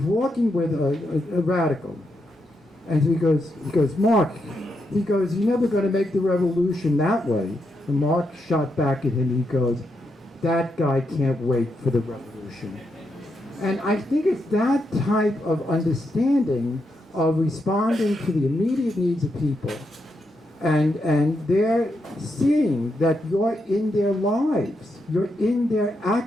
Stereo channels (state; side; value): normal; both; correlation 0.82